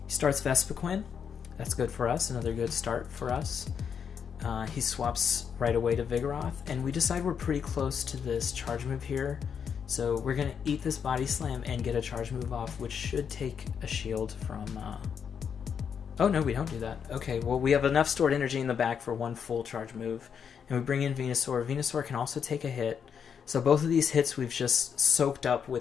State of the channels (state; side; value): quieter; right; 7.2 dB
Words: He starts Vespiquen. That's good for us. Another good start for us. He swaps right away to Vigoroth. And we decide we're pretty close to this charge move here. So we're going to eat this Body Slam and get a charge move off, which should take a shield from... Oh, no, we don't do that. Okay, well, we have enough stored energy in the back for one full charge move. And we bring in Venusaur. Venusaur can also take a hit. So both of these hits we've just soaked up